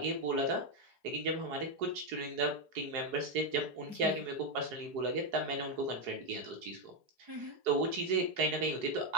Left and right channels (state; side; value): late; left; 4.8 ms